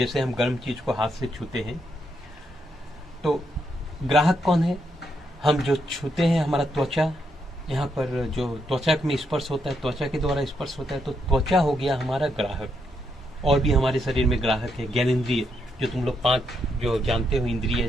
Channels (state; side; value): normal; both; correlation 0.79